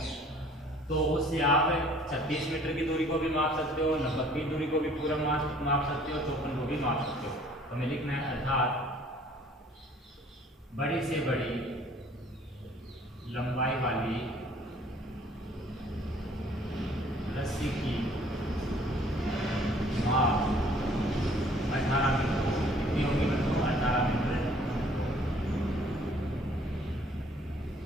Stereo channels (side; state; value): both; normal; correlation 0.56